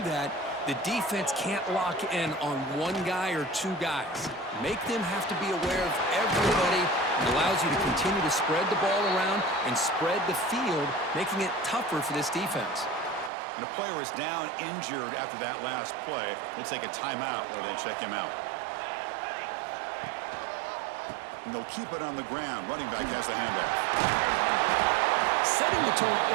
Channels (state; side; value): drops out; left; at 13.3 s